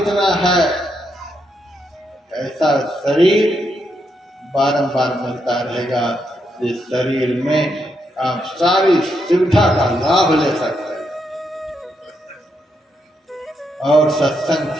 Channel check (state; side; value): normal; both; correlation 0.80